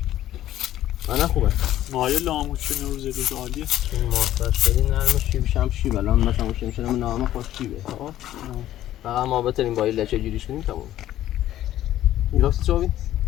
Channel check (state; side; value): quieter; right; 13.1 dB